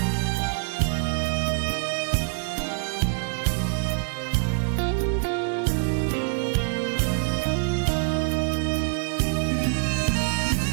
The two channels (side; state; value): left; silent; 62 dB below the other